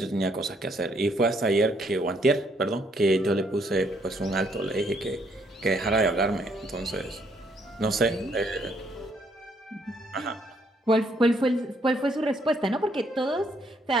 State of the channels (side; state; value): both; normal; correlation 0.70